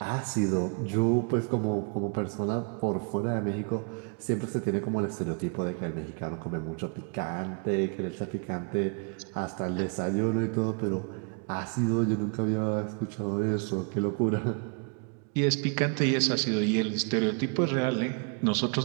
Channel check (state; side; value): quieter; left; 35.7 dB